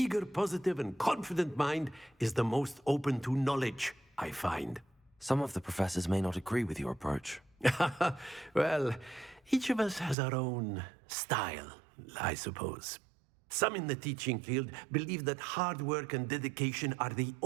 positive, and confident mind is the most open to knowledge, I find. Some of the professors may not agree with your approach. Well, each of us has our own style, I suppose. Some in the teaching field believe that hard work and dedication are the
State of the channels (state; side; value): drops out; left; at 10.2 s